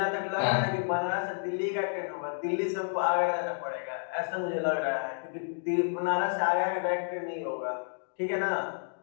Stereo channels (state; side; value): silent; right; digital silence